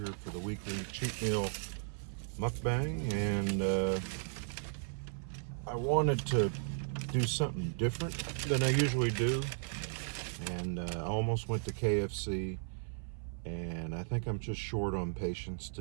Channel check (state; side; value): silent; left; 54 dB below the other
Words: for the weekly cheat meal mukbang. And I wanted to do something different than I usually do. And I almost went to KFC. And I think I'm just short on patience